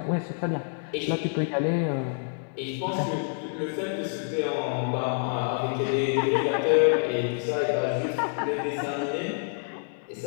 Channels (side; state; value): right; silent; digital silence